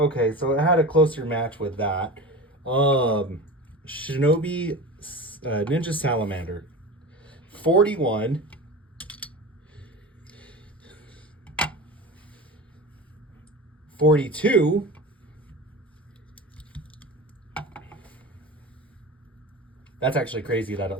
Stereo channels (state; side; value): normal; both; correlation 0.30